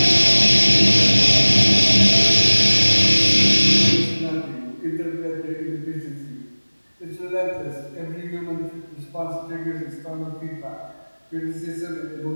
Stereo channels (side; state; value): both; inverted; correlation -1.00